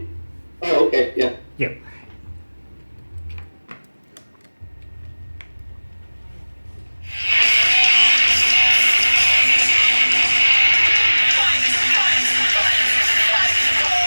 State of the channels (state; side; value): inverted; both; correlation -1.00